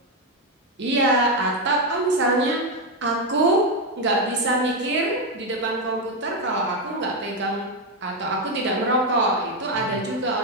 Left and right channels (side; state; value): both; normal; correlation 0.06